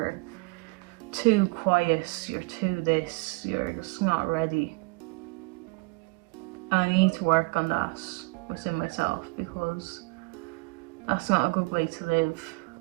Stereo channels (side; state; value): left; quieter; 29.1 dB